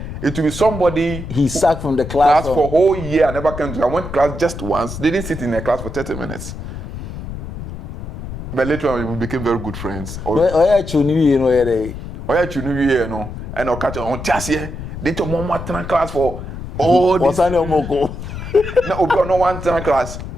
It will be somebody he sacked from the class for a whole year. I never came to. I went to class just once. They didn't sit in a class for 30 minutes. But later on, we became very good friends. And I'll catch on just here. They took one class for all this. No one class.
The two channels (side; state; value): left; noise; rumble, 9 dB below the sound